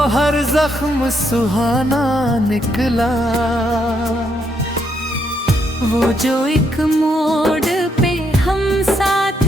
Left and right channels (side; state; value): both; normal; correlation 0.76